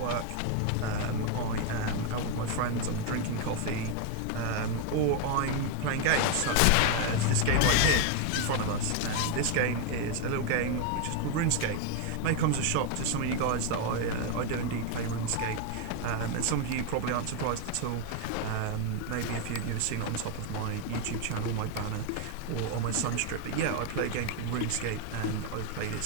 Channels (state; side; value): different; both; correlation 0.01